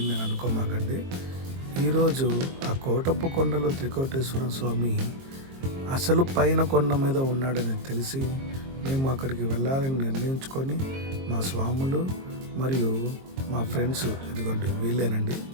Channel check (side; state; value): left; late; 22 ms